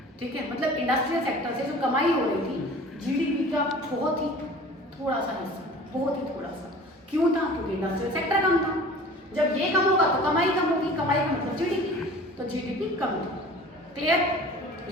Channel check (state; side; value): normal; both; correlation 0.43